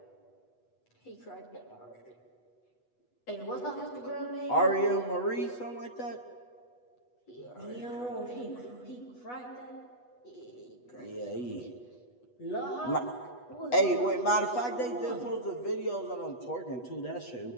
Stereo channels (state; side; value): late; right; 8.2 ms